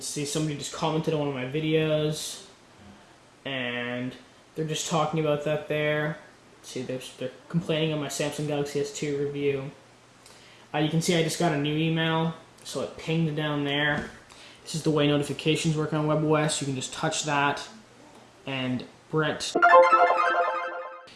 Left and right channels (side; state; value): both; identical; correlation 1.00